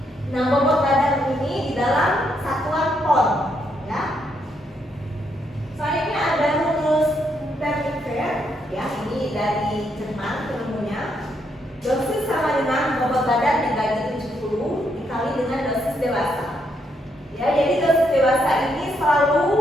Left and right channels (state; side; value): normal; both; correlation 0.76